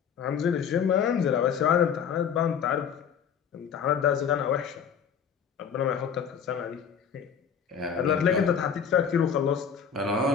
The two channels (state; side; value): quieter; right; 7.3 dB